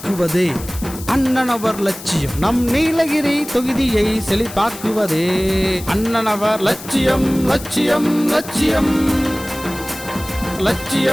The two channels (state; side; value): noise; left; hiss, 14 dB below the sound